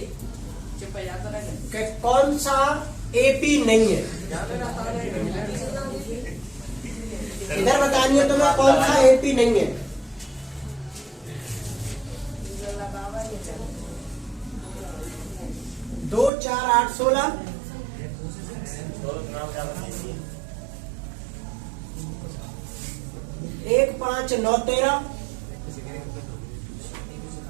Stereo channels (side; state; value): left; drops out; at 16.3 s